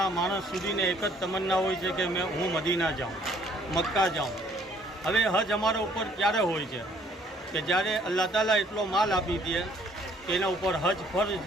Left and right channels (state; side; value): normal; both; correlation 0.62